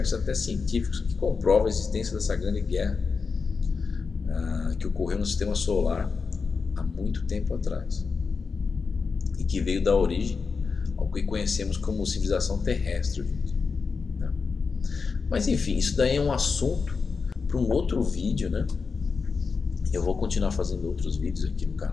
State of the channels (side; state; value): right; quieter; 5.0 dB